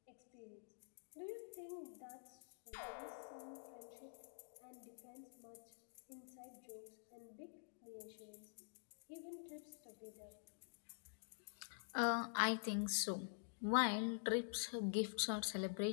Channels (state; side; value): silent; right; digital silence